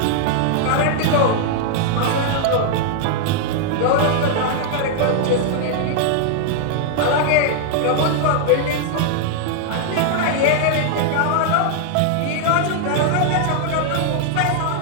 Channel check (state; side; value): different; both; correlation 0.00